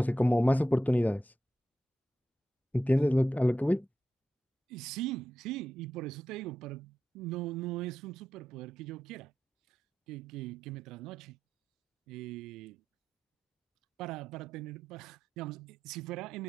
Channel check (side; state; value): both; normal; correlation 0.90